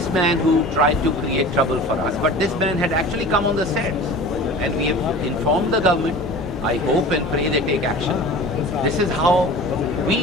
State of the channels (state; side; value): normal; both; correlation 0.38